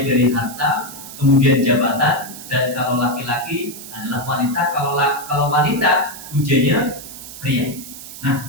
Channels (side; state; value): right; noise; hiss, 13 dB below the sound